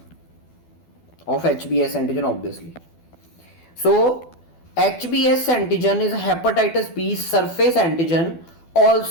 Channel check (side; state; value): right; late; 12 ms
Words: of HBS antigen, obviously. So HBS antigen is hepatitis B surface antigen,